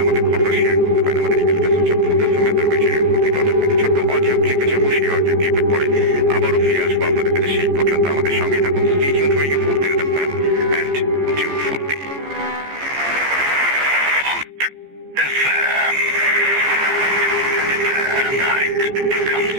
আমাদের ঘটনা শেয়ার করতে পারেন। আমাদের ইমেল অ্যাড্রেস হচ্ছে ছোট্ট অডিও ক্লিপ যাবো, সেই অডিও ক্লিপের পরে আবারও ফিরে আসবো আপনাদের কাছে। সেই পর্যন্ত আমাদের সঙ্গে থাকুন। Stay tuned for your Food FM and do Foodie. FM. The night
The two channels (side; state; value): left; late; 14 ms